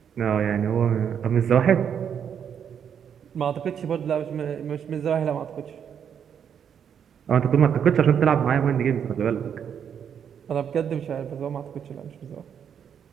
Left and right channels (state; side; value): quieter; left; 8.1 dB